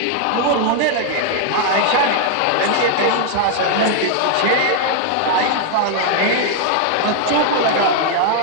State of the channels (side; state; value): both; different; correlation 0.00